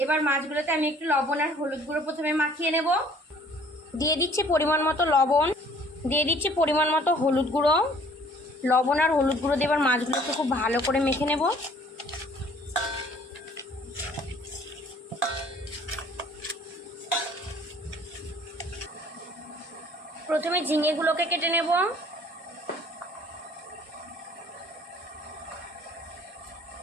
এবার মাছগুলোতে আমি একটু লবণ আর হলুদ গুঁড়ো প্রথমে মাখিয়ে নেব। দিয়ে দিচ্ছি পরিমাণ মতো লবণ, দিয়ে দিচ্ছি পরিমাণ মতো হলুদ গুঁড়ো। লবণ আর হলুদ গুঁড়ো দিয়ে এবার মাছগুলোকে খুব ভালো করে মেখে নেব। প্রথমে ঝিঙেগুলোকে কেটে নেব।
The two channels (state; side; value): normal; both; correlation 0.55